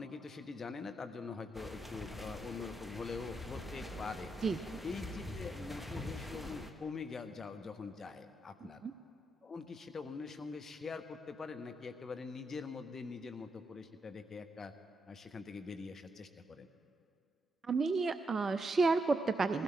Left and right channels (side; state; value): both; normal; correlation 0.82